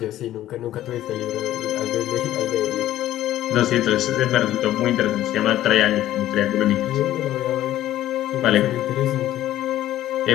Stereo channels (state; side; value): quieter; right; 13.4 dB